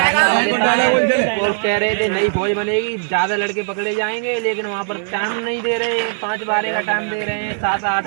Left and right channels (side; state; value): left; silent; digital silence